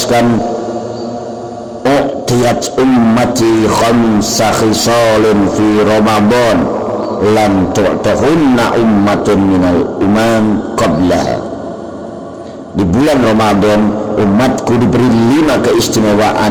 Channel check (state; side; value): identical; both; correlation 1.00